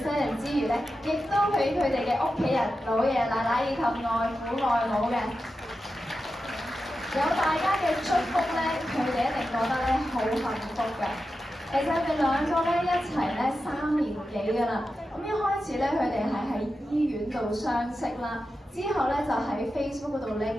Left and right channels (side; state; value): both; normal; correlation 0.91